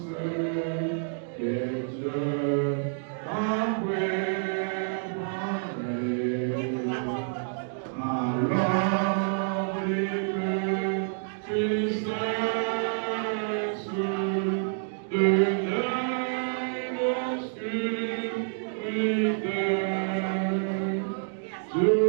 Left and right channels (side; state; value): left; silent; digital silence